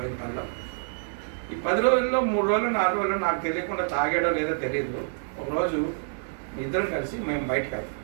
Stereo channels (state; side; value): silent; left; digital silence